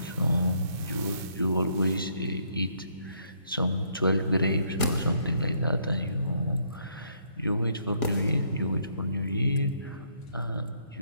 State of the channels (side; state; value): both; inverted; correlation -0.70